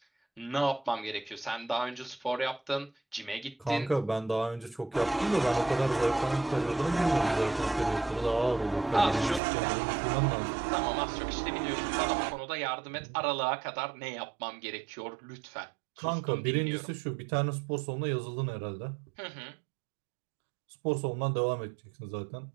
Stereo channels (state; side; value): drops out; left; at 9.4 s